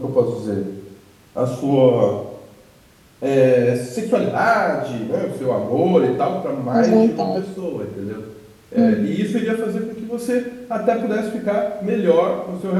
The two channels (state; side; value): identical; both; correlation 1.00